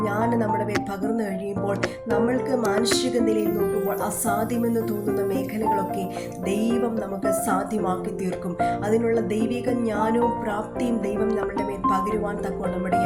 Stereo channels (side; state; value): both; identical; correlation 1.00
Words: ജ്ഞാനം നമ്മുടെ മേൽ പകർന്നു കഴിയുമ്പോൾ നമ്മൾക്ക് മാനുഷിക നിലയിൽ നോക്കുമ്പോൾ അസാധ്യമെന്ന് തോന്നുന്ന മേഖലകളൊക്കെ ദൈവം നമുക്ക് സാധ്യമാക്കി തീർക്കും. അതിനുള്ള ദൈവിക ജ്ഞാനവും പ്രാപ്തിയും ദൈവം നമ്മുടെ മേൽ പകരുവാൻ തക്കോണം